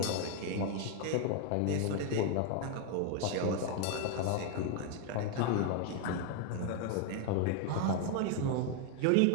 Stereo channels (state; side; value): different; both; correlation 0.00